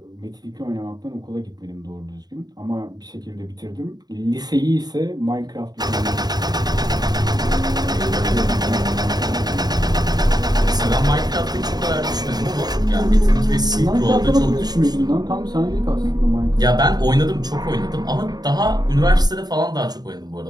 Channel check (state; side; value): late; left; 0.19 ms